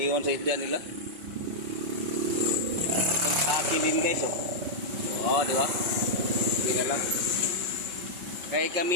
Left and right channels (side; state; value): left; late; 5.6 ms